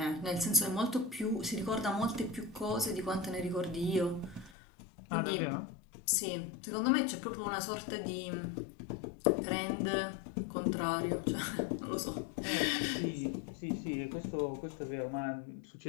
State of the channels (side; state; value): right; drops out; at 4.5 s